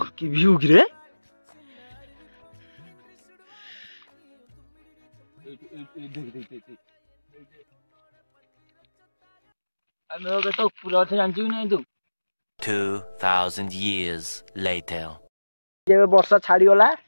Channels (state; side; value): inverted; both; correlation -1.00